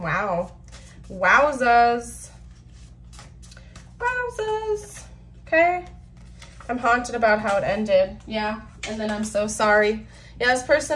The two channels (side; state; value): both; identical; correlation 1.00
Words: Wowzas. Wowzas. Okay. I'm haunted about how it ended. Yeah. And then I'm so sorry. Yeah, this